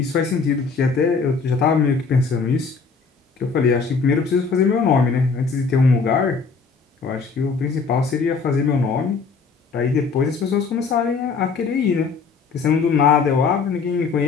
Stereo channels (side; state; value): right; quieter; 5.0 dB